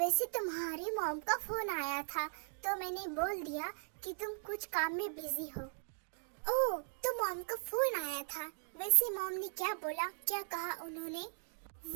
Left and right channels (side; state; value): left; silent; digital silence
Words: तुम्हारी मॉम का फोन आया था तो मैंने बोल दिया कि तुम कुछ काम में बिजी हो। ओह, तो मॉम का फोन आया था। वैसे मॉम ने क्या बोला, क्या कहा उन्होंने?